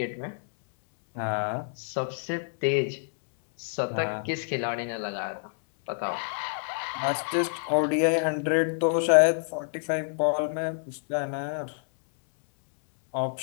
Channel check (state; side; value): silent; right; 60 dB below the other